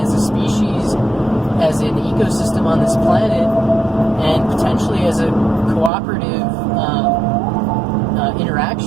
a species, as an ecosystem on this planet, and potentially as a cooperative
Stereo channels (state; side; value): drops out; left; at 5.9 s